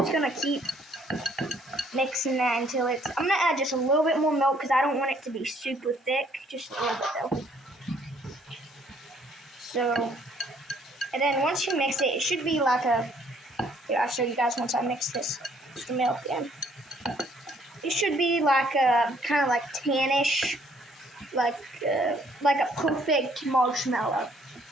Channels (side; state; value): both; normal; correlation 0.64